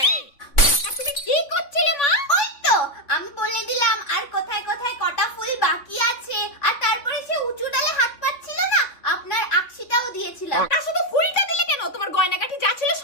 তুমি কি করছিলে মা? ওই তো আমি বলে দিলাম আর কোথায় কোথায় কটা ফুল বাকি আছে, আর তারপরে সে উঁচু ডালে হাত পাচ্ছিল না, আপনার আকশিটাও দিয়েছিলাম। তা শুধু ফুলটা দিলে কেন? তোমার গয়নাগাটি যা ছিল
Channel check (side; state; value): right; late; 3.6 ms